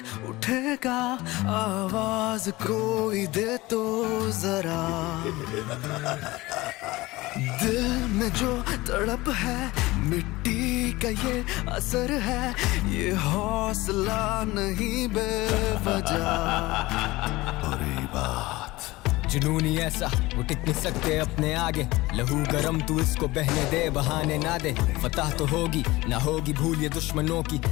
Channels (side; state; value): right; quieter; 20.0 dB